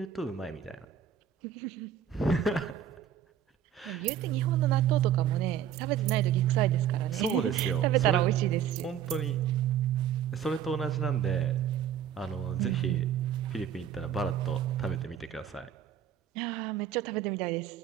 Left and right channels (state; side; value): quieter; left; 9.3 dB